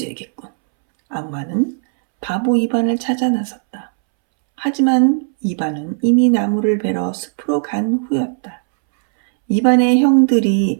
악마는 바보 이반을 찾아 나섰다. 하지만 이반은 이미 나무를 베러 숲으로 간 후였다. 이반의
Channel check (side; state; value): left; silent; 68 dB below the other